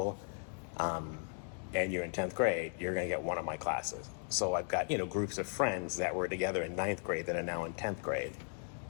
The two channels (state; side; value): silent; right; 53 dB below the other